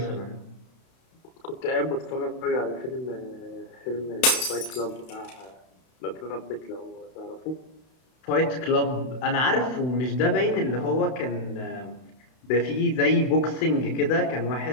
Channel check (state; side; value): late; right; 32 ms